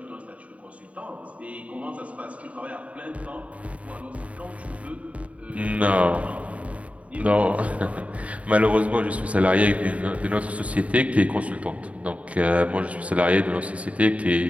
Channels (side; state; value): left; late; 0.066 ms